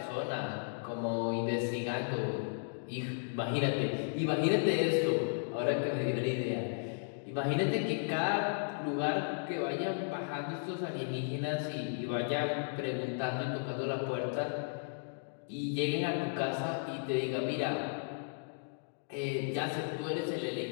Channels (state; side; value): silent; right; digital silence